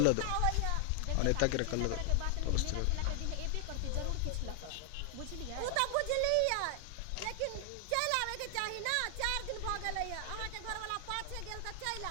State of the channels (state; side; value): different; both; correlation 0.00